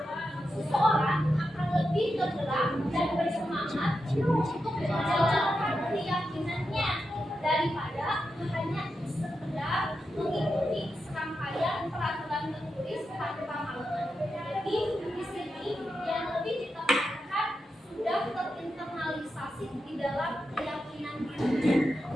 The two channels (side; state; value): both; normal; correlation 0.88